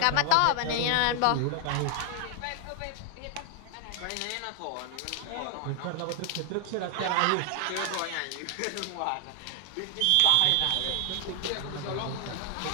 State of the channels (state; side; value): different; both; correlation 0.00